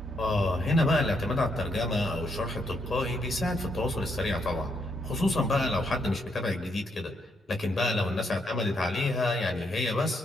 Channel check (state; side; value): normal; both; correlation 0.76